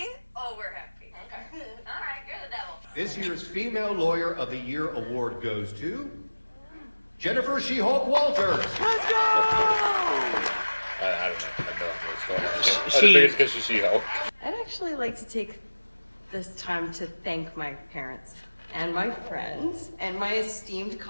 Oh, we're happy. Okay. All right, you're the devil. This year's Female Lawyer of the Year award goes to Jennifer She-Hulk Walters. Let's go! I don't know. I have no idea what's going on. I She- think it's because she's She-Hulk. I'd actually like to take this time to thank my parents and my friends and my esteemed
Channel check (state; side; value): inverted; both; correlation -1.00